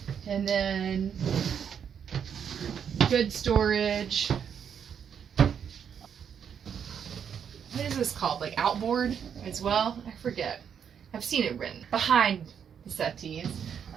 And then good storage. What is this called? Like outboard as well? I forget. I've seen it written behind the settees.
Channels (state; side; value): quieter; left; 7.9 dB